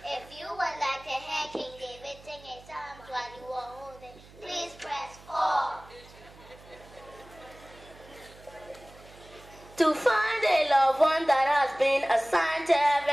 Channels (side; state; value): right; noise; hum, 22 dB below the sound